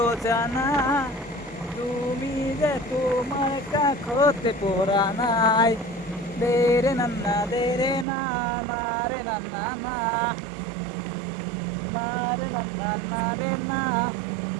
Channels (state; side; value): drops out; left; at 8.1 s